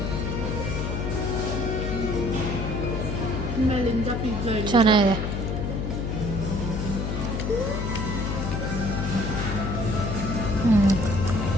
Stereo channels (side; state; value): left; noise; hum, 2 dB below the sound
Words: ಮೇಲಿಂದ ಪಿಜ್ಜಾ ಚೆನ್ನಾಗಿದೆ.